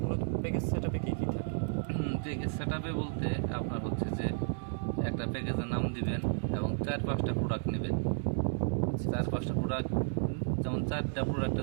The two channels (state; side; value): silent; left; digital silence